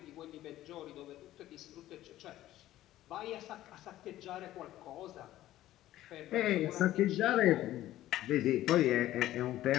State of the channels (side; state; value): right; quieter; 14.3 dB